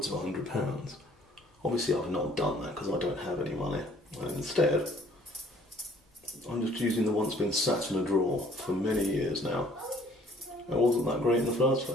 of £100. Obviously I've not done that because I don't have any money. And instead, I'm just using the one that's been sat in a drawer for many years now. It wasn't that great in the first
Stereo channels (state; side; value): normal; both; correlation 0.58